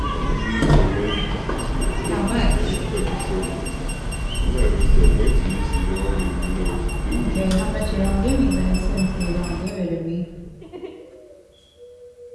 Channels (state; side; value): identical; both; correlation 1.00